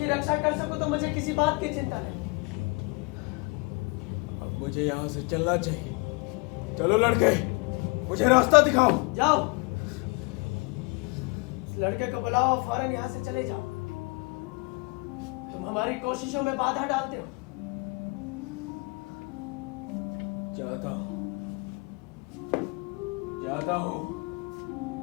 रक्षा कर सकूं तो मुझे किसी बात की चिंता नहीं। अब मुझे यहाँ से चलना चाहिए। चलो लड़के, मुझे रास्ता दिखाओ। जाओ, इस लड़के को बुलाओ, फौरन यहाँ से चले जाओ। तुम हमारी कोशिशों में बाधा डालते हो। जाता हूं,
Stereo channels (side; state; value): right; quieter; 28.9 dB